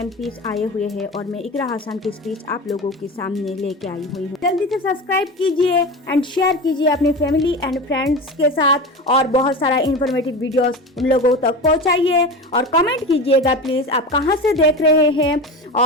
आए हुए हैं और मैं इकरा हसन की स्पीच आप लोगों के सामने लेके आई हुई हूँ। जल्दी से सब्सक्राइब कीजिए एंड शेयर कीजिए अपनी फैमिली एंड फ्रेंड्स के साथ और बहुत सारा इंफॉर्मेटिव वीडियोस उन लोगों तक पहुँचाइए और कमेंट कीजिएगा प्लीज आप कहाँ से देख रहे हैं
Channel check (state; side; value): normal; both; correlation 0.27